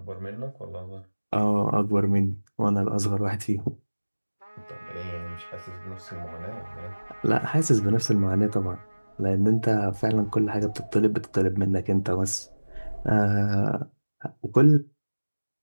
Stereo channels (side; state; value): both; inverted; correlation -1.00